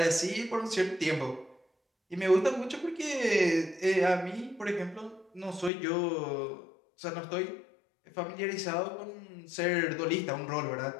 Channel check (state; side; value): drops out; right; at 5.7 s